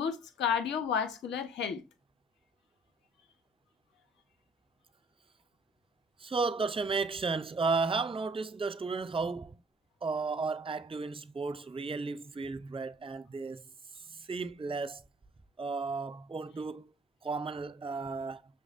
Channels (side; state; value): both; normal; correlation 0.56